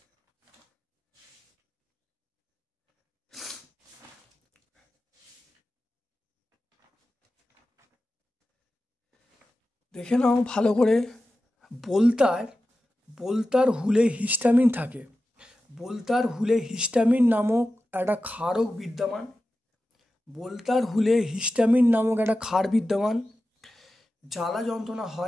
দেখে নাও ভালো করে। বলতার হুলে হিস্টামিন থাকে। বলতার হুলে হিস্টামিন নামক একটা ক্ষারক বিদ্যমান। বলতার হুলে হিস্টামিন নামক একটা ক্ষার বিদ্যমান। জ্বালা যন্ত্রণা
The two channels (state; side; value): normal; both; correlation 0.93